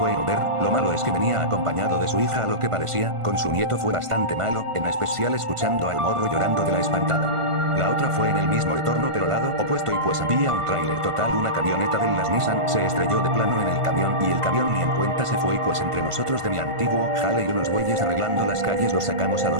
en Uber. Lo malo es que venía acompañado de su hija a lo que parecía, con su nieto fue bastante malo, en especial escuchando al morro llorando de la espantada. La otra fue en el mismo retorno pero lado opuesto y pues había un tráiler total, una camioneta de las Nissan se estrelló de plano en el camión y el camión ni en cuenta se fue y pues entre nosotros de mi antiguo jale y unos güeyes arreglando las calles los sacamos a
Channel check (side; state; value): left; late; 1.5 ms